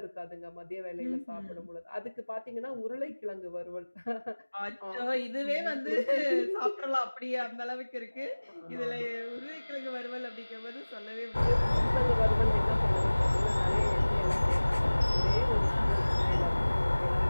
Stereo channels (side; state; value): both; inverted; correlation -1.00